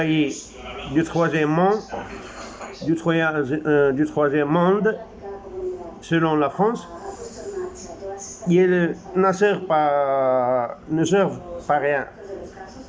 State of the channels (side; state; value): both; identical; correlation 1.00